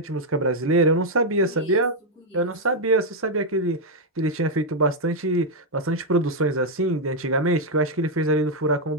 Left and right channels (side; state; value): both; normal; correlation 0.00